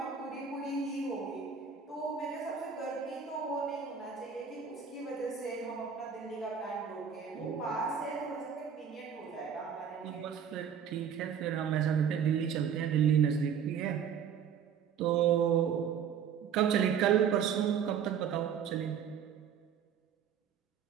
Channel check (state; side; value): quieter; left; 7.6 dB